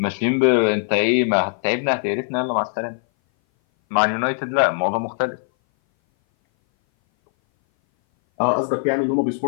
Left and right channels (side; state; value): right; silent; 59 dB below the other